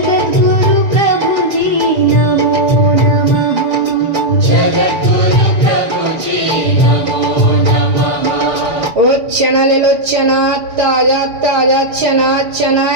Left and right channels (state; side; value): late; left; 6.7 ms